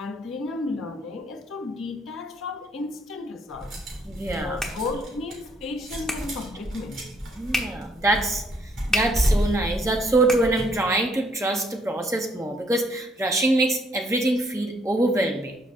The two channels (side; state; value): both; normal; correlation 0.67